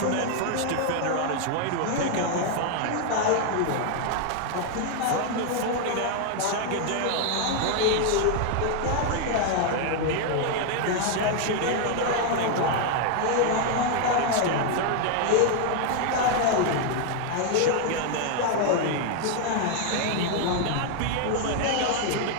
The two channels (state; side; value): different; both; correlation 0.00